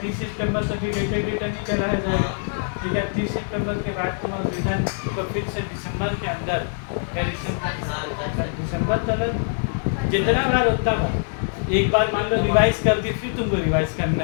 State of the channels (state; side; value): silent; right; 56 dB below the other